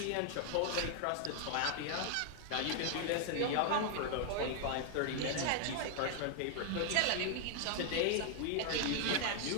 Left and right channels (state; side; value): different; both; correlation 0.00